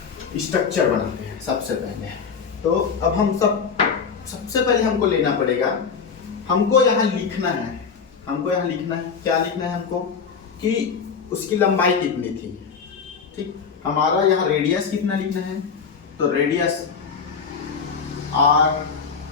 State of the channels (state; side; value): quieter; right; 6.0 dB